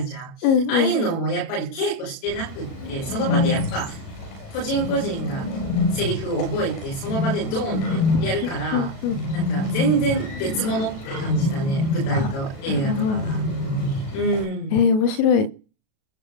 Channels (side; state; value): right; late; 36 ms